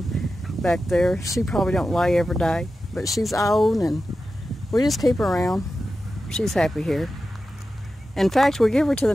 back there. She probably don't lay every day, but she's old and we just keep her around. She's happy here. In fact, we give her to the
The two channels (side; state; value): both; normal; correlation 0.92